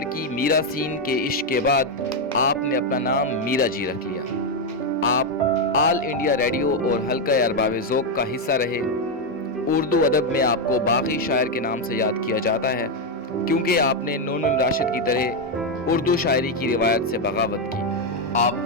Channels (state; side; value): normal; both; correlation 0.04